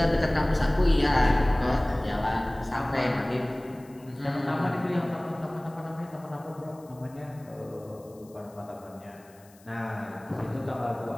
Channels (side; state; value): left; noise; hiss, 28 dB below the sound